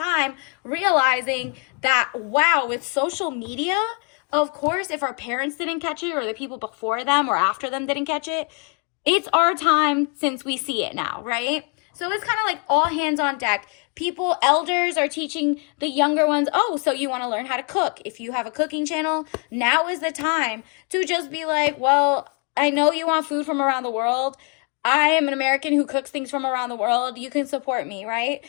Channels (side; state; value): right; quieter; 35.9 dB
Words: realizing that, wow, with social media, of course, if our parents didn't catch it, or the people before them or after them didn't catch it, it's our time since we see it now, right? So it's kind of like all hands on deck. People, elders are teaching the younger ones, oh, so you want to learn how to cook. If you have a cooking channel, now is the time to just be like, well, I know you want food from around the world. I am an American who cooks things from around the world. You can support me, right?